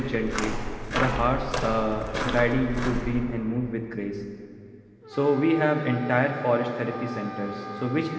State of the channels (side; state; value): both; identical; correlation 1.00